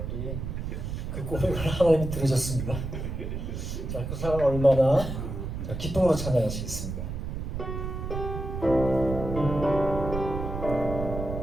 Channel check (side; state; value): right; noise; rumble, 5 dB below the sound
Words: 우리 그 고백을 하나님이 들으셨습니다. 자, 그 사람 얼마나 기쁨으로 찬양하시겠습니다.